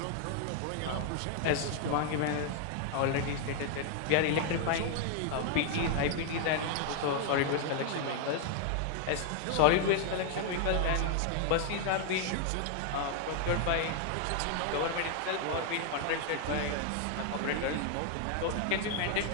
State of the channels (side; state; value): both; different; correlation 0.00